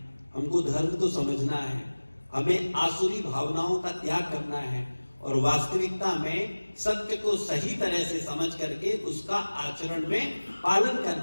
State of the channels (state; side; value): inverted; both; correlation -1.00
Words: हमको धर्म को समझना है, हमें आसुरी भावनाओं का त्याग करना है और वास्तविकता में सत्य को सही तरह से समझ करके उसका आचरण में पालन